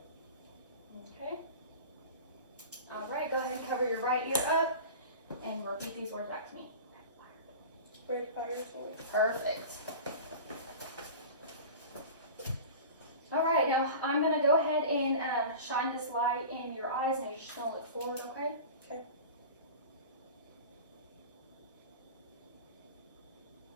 Okay. All right, go ahead and cover your right ear up and repeat these words back to me. Red fire toy. Perfect. All right, now I'm going to go ahead and shine this light in your eyes. Now you're just going to look forward, okay? Okay.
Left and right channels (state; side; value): inverted; both; correlation -0.35